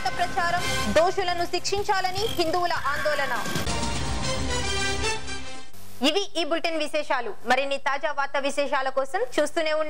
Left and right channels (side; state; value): both; identical; correlation 1.00